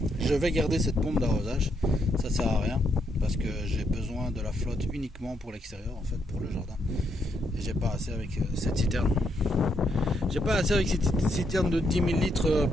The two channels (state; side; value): normal; both; correlation 0.77